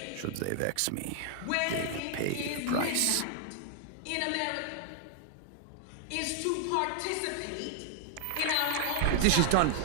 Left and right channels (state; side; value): different; both; correlation -0.01